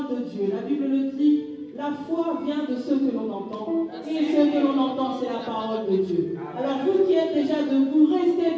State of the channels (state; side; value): identical; both; correlation 1.00